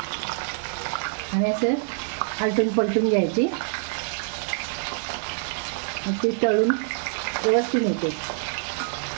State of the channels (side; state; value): left; silent; digital silence